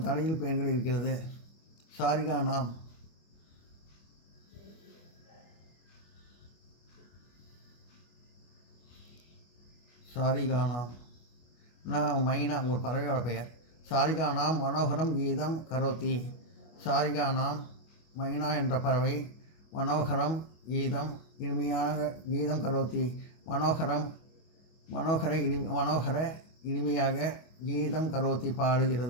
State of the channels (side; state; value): right; late; 25 ms